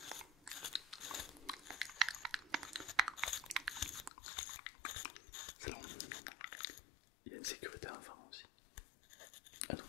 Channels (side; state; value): right; drops out; at 4.1 s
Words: C'est long. Il y a une sécurité enfant aussi. Ah non.